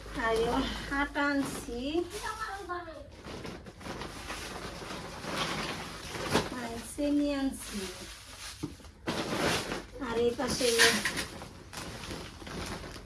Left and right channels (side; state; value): both; identical; correlation 1.00